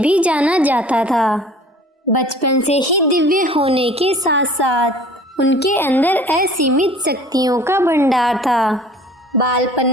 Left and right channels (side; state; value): both; normal; correlation 0.48